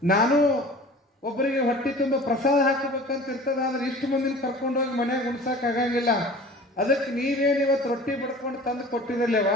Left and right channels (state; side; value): normal; both; correlation 0.43